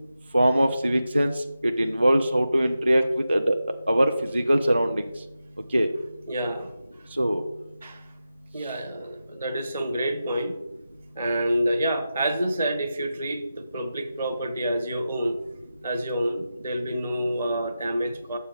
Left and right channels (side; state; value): both; inverted; correlation -0.91